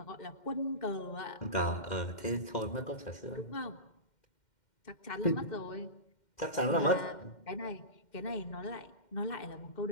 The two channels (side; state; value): right; late; 2.1 ms